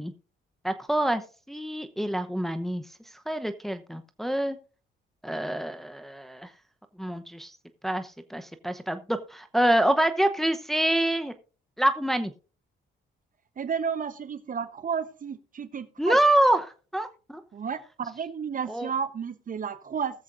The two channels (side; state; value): both; normal; correlation 0.85